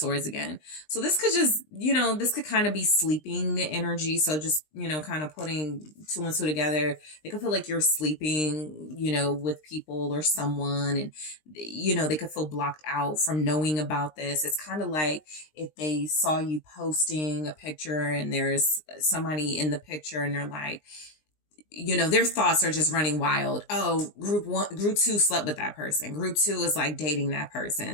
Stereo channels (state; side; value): late; right; 20 ms